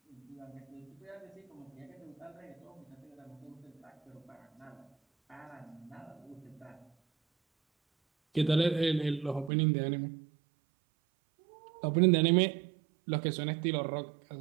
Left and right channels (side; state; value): left; drops out; at 9.5 s